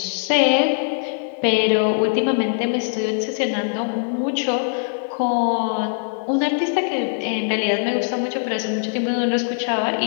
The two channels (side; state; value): right; silent; 57 dB below the other